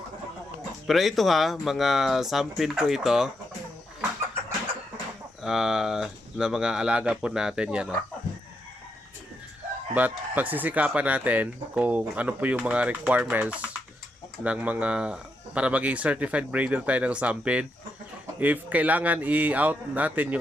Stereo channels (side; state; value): both; normal; correlation 0.82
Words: Pero ito mga sampin po ito. Na mga alaga po natin yan. But pagsisikapan natin kung ano po yung mga requirements ng mga para maging certified breeder tayo ng sampin. If kailangan i-out natin